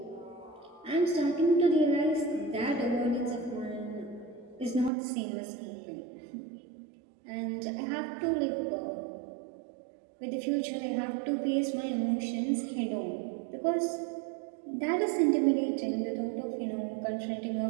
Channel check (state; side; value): drops out; left; at 4.9 s